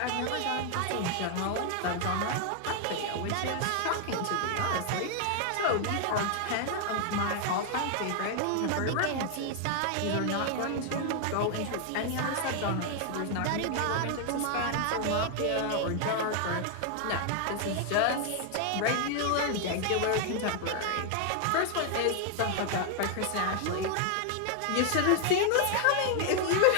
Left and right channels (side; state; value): both; different; correlation 0.00